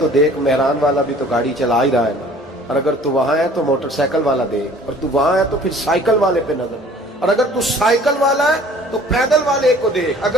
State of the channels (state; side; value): normal; both; correlation 0.51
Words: دیکھ مہران والا بھی تو گاڑی چلا ہی رہا ہے نا. اور اگر تو وہاں ہے تو موٹر سائیکل والا دیکھ. اور تو وہاں ہے تو پھر سائیکل والے پہ نظر. اور اگر تو سائیکل والا ہے تو پیدل والے کو دیکھ.